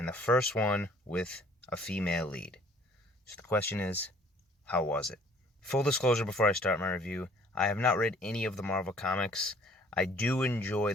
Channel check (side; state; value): both; normal; correlation 0.56